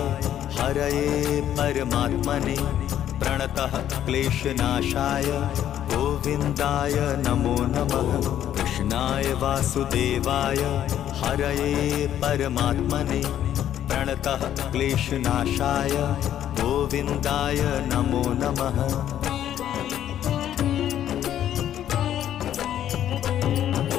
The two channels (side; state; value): right; quieter; 10.9 dB